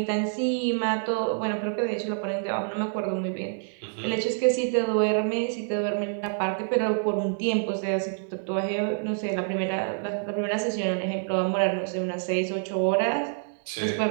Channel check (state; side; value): silent; left; digital silence